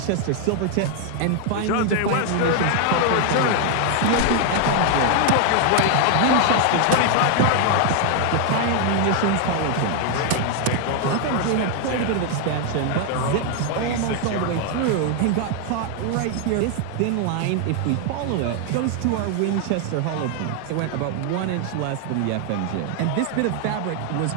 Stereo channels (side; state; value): both; different; correlation 0.00